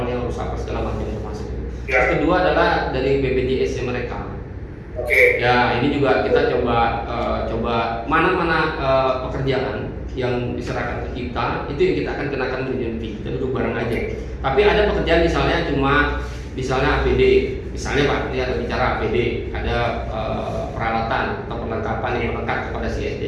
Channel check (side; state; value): both; identical; correlation 1.00